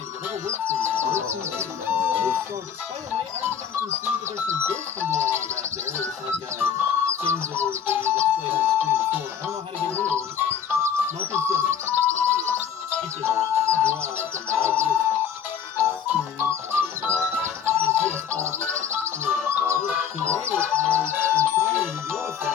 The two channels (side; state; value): right; quieter; 8.1 dB